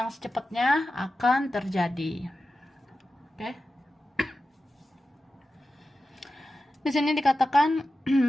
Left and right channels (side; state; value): both; normal; correlation 0.93